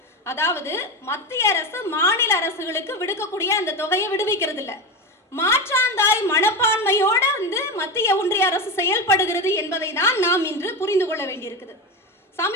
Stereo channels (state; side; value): normal; both; correlation 0.19